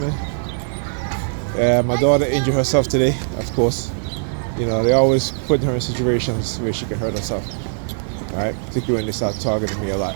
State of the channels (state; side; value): silent; left; digital silence